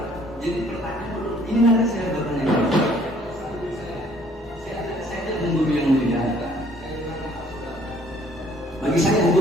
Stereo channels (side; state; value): both; normal; correlation 0.60